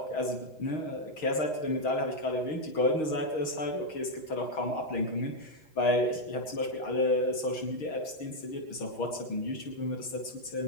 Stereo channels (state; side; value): late; right; 6.4 ms